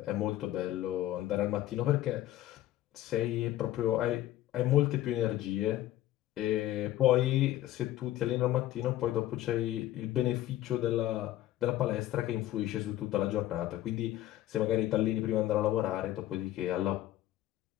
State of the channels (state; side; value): quieter; right; 14.0 dB